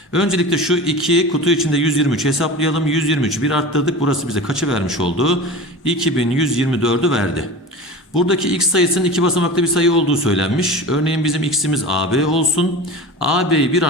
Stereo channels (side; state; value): both; normal; correlation 0.33